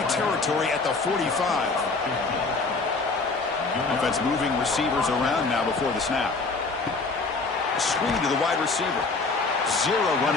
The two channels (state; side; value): quieter; right; 3.9 dB